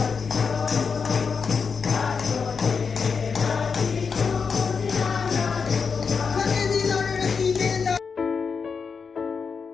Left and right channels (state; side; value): quieter; right; 5.6 dB